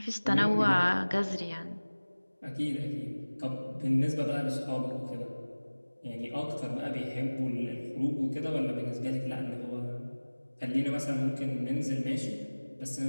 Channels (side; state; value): both; inverted; correlation -1.00